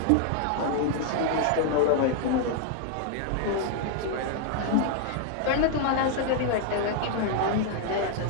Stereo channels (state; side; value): different; both; correlation 0.00